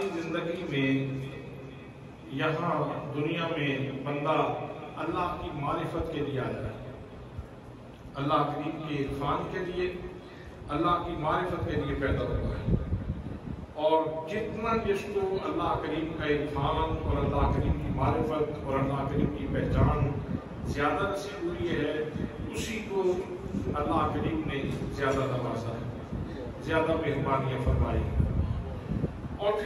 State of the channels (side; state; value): both; identical; correlation 1.00